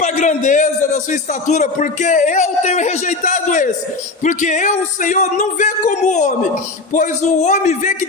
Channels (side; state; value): right; quieter; 3.5 dB